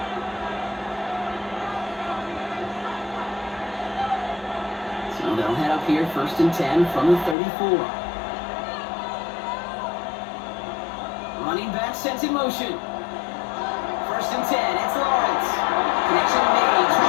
So they'll head up here, 1st and 10 from the 34. Running back sends in motion. 1st and 10, it's Lawrence. Connection made,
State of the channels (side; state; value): right; drops out; at 7.4 s